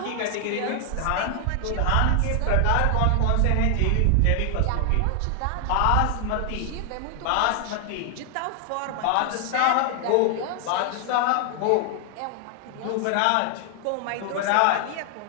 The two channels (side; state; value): both; different; correlation 0.00